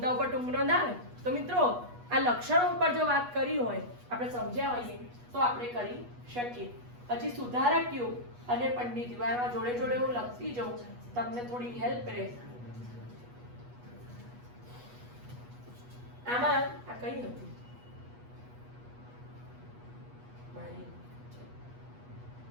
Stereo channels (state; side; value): late; left; 8.2 ms